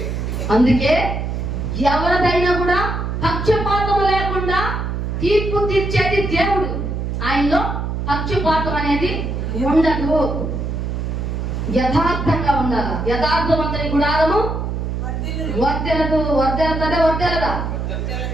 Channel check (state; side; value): noise; right; hum, 3 dB below the sound